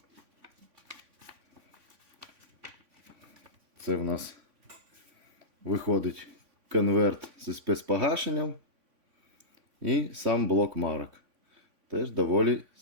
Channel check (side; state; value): left; late; 3.5 ms